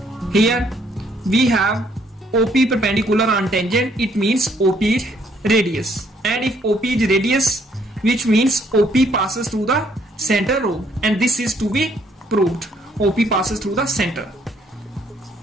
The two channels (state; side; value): normal; both; correlation 0.67